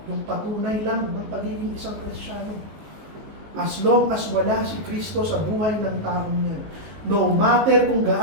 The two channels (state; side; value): late; left; 19 ms